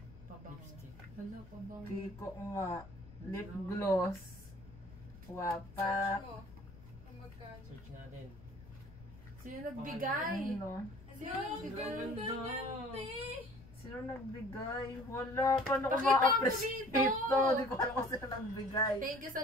Pabango. Lipstick. Hala, pabango. Kiko nga. Lip gloss. Wapak. Search mo. Kung magkano. Search natin. Sino nagbigay? Ano? Sino Ano? nagbigay? Ganda! Sino nagbigay? Wala. Paano ko Pakita mo ma-appreciate dito. ito? Hindi ko alam kung sino nagbigay. Thank you sa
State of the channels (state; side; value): noise; left; rumble, 19 dB below the sound